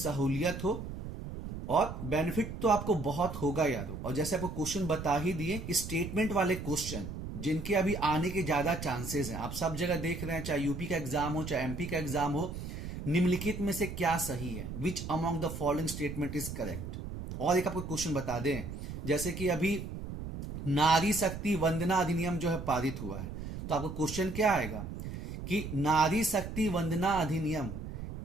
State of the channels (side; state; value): right; noise; rumble, 7 dB below the sound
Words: हो, और बेनिफिट तो आपको बहुत होगा यारो। और जैसे आपको क्वेश्चन बता ही दिए कि स्टेटमेंट वाले क्वेश्चन जिनके अभी आने के ज्यादा चांसेस हैं, आप सब जगह देख रहे हैं, चाहे यूपी का एग्जाम हो चाहे एमपी का एग्जाम हो, निम्नलिखित में से क्या सही है, which among the following statement is correct. और एक आपको क्वेश्चन बता दें, जैसे कि अभी नारी शक्ति वंदना अधिनियम जो है पारित हुआ है, तो आपको क्वेश्चन क्या आएगा कि नारी शक्ति वंदना अधिनियम,